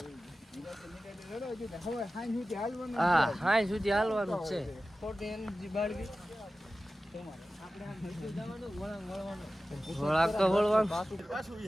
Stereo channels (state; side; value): normal; both; correlation 0.95